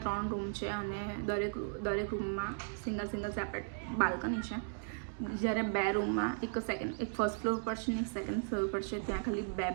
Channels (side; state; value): left; silent; digital silence